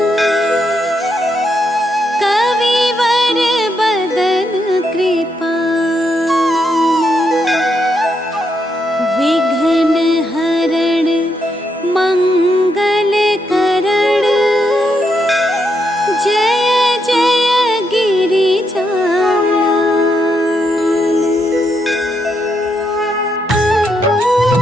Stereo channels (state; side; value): normal; both; correlation 0.80